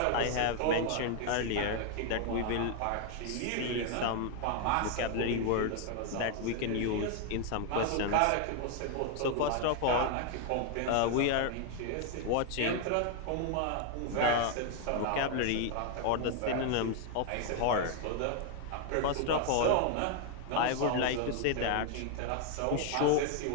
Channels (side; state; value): both; different; correlation 0.00